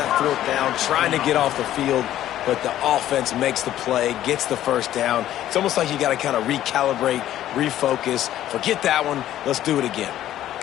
4th down, trying to get off the field, but the offense makes the play, gets the first down. It's almost like you got to kind of recalibrate, refocus. Forget that one. Let's do it again.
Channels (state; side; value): quieter; right; 12.6 dB